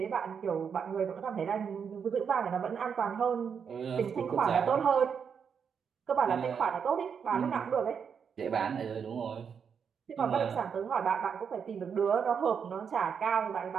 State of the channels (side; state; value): left; quieter; 6.8 dB